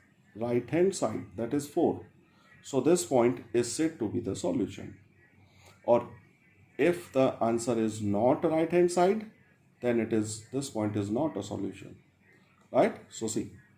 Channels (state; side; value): identical; both; correlation 1.00